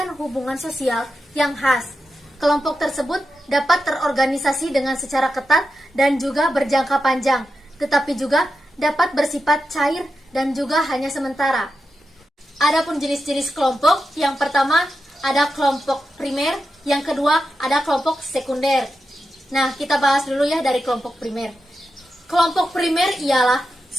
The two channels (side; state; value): both; normal; correlation 0.89